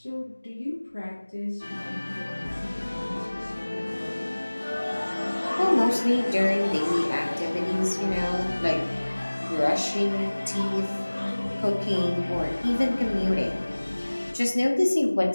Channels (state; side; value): inverted; both; correlation -1.00